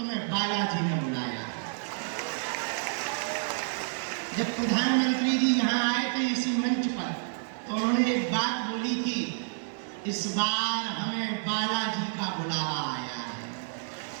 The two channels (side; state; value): left; silent; 58 dB below the other